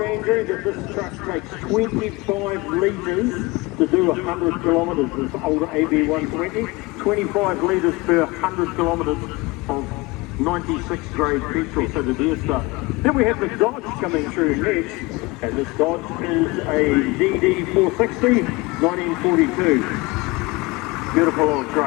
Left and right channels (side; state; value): right; quieter; 23.2 dB